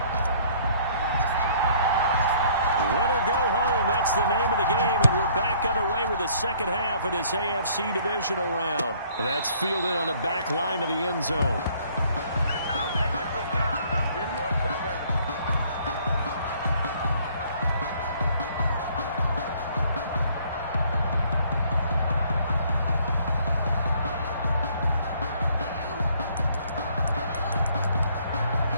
Win or go home, that's the name of the game, and we're back underway with the second half of this AFC Divisional Round. That's fielded on the back line of the end zone.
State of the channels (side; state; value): both; inverted; correlation -0.60